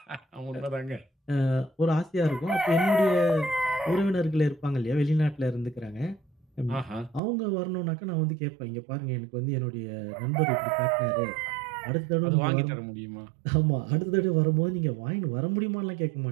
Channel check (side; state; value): left; drops out; at 7.2 s